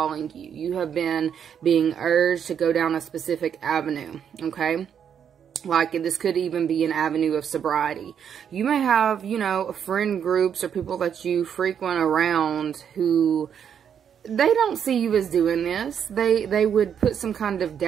you. You have been being urged to go down a specific avenue, okay? Like, this could even be an avenue of sobriety. You may have, you know, friend groups or people that you frequent around who, they don't see you as doing this. They would put some kind of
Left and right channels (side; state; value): left; quieter; 8.2 dB